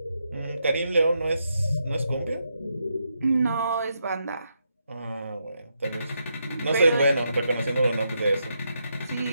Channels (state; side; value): inverted; both; correlation -0.82